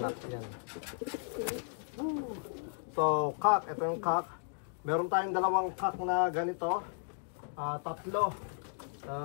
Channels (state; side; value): silent; right; digital silence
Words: Yan. So cock, ito yung cock. Meron tayong dalawang cock na ganito. Tatlo.